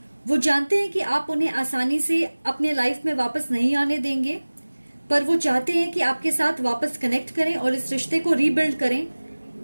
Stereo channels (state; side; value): inverted; both; correlation -1.00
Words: वो जानते हैं कि आप उन्हें आसानी से अपने लाइफ में वापस नहीं आने देंगे, पर वो चाहते हैं कि आपके साथ वापस कनेक्ट करें और इस रिश्ते को रीबिल्ड करें।